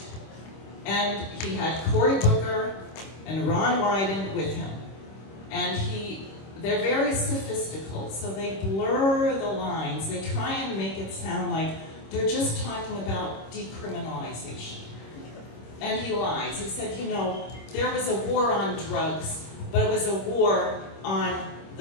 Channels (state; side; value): late; right; 26 ms